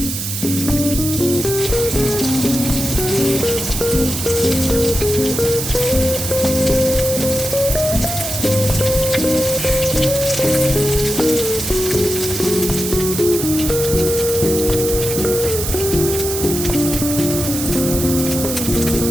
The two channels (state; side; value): noise; right; hiss, 4 dB below the sound